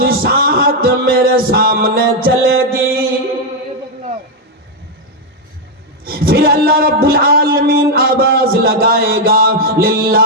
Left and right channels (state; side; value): normal; both; correlation 0.01